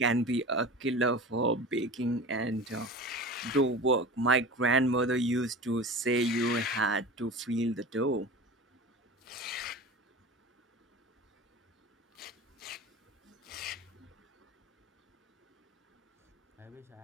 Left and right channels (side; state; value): both; normal; correlation 0.34